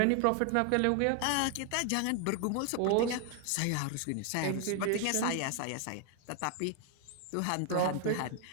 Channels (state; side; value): different; both; correlation 0.00